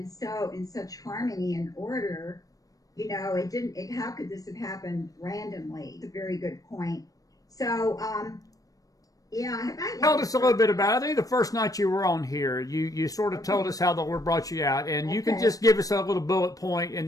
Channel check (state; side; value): late; right; 0.17 ms